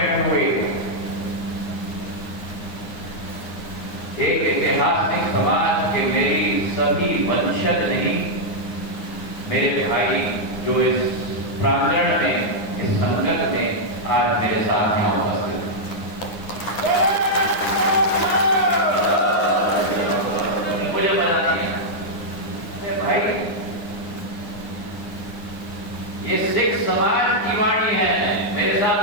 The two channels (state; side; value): late; right; 9.8 ms